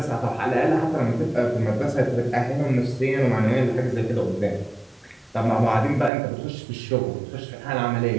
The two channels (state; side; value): drops out; left; at 6.1 s